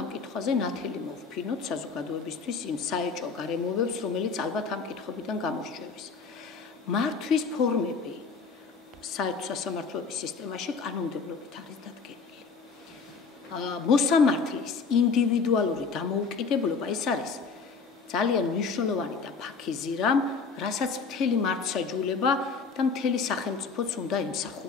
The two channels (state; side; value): quieter; right; 5.0 dB